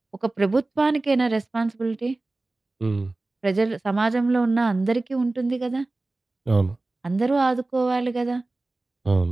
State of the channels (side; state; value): left; quieter; 3.0 dB